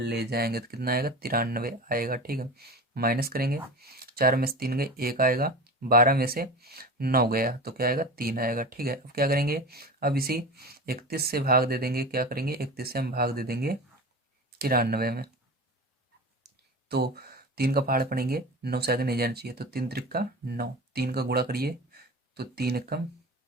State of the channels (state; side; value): normal; both; correlation 0.31